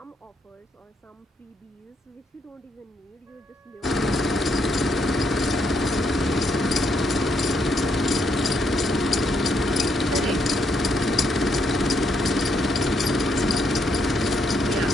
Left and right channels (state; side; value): normal; both; correlation 0.75